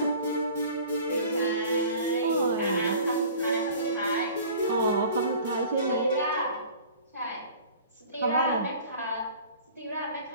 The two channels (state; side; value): inverted; both; correlation -0.46